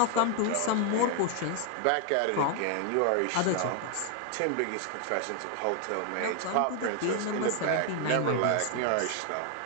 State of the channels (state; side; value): different; both; correlation 0.00